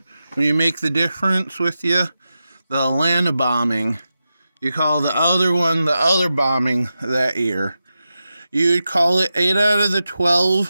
when you make the difference with you the Atlanta bombing. You call the other one the other bombing that year. You'd call it 8 out of the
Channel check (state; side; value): inverted; both; correlation -0.91